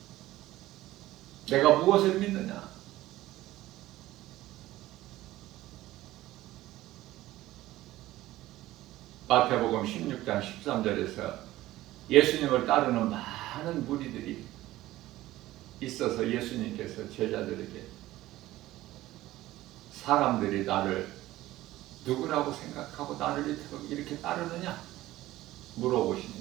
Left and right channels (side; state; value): left; quieter; 16.1 dB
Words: 내가 무엇을 믿느냐? 마태복음 16장 13절에서 예수님을 따르는 많은 무리들이 있어서 예수님께서 제자들에게 사람들이 나를 누구라고 생각하고 나를 이렇게 따르느냐